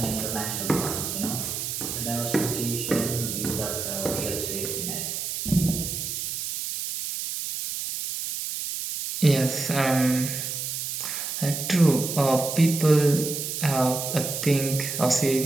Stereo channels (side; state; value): right; noise; hiss, 4 dB below the sound